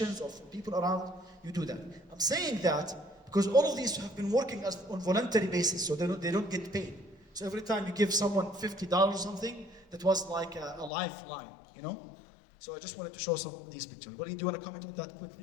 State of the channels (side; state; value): right; drops out; at 10.9 s